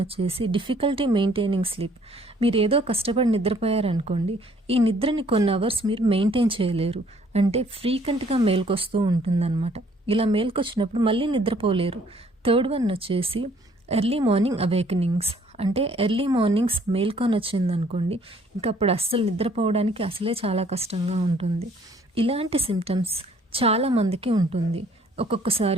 వచ్చేసి డిఫికల్టీ మెయింటైనింగ్ స్లీప్. మీరు ఏదో కష్టపడి నిద్రపోయారనుకోండి, ఈ నిద్రని కొన్ని అవర్స్ మీరు మెయింటైన్ చేయలేరు, అంటే ఫ్రీక్వెంట్గా మేల్కొస్తూ ఉంటుందన్నమాట. ఇలా మేల్కొచ్చినప్పుడు మళ్ళీ నిద్రపోలేరు. థర్డ్ వన్ వచ్చేసి ఎర్లీ మార్నింగ్ అవేకనింగ్స్, అంటే ఎర్లీ మార్నింగ్స్ మేల్కొని వచ్చిందనుకోండి, ఇంకా అప్పుడు అస్సలు నిద్రపోవడానికి అసలే చాలా కష్టంగా ఉంటుంది. ఇలాంటి సిమ్టమ్స్ చాలామందికి ఉంటుంది.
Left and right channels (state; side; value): normal; both; correlation 0.61